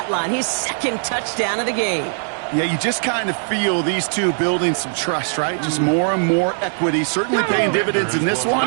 line. His second touchdown of the game. Yeah, you just kind of feel these two building some trust, right? Just more and more equity. Certainly paying dividends in this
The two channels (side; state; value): left; silent; digital silence